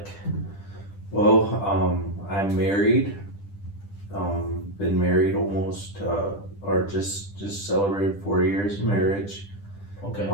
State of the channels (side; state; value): right; late; 10 ms